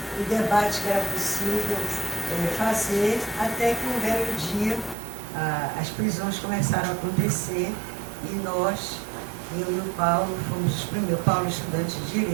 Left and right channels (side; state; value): left; drops out; at 5.0 s